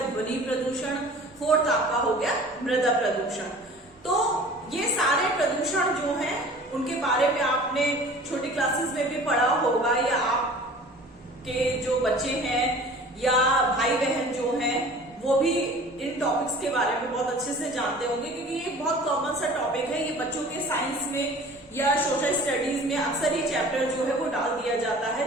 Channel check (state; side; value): normal; both; correlation 0.45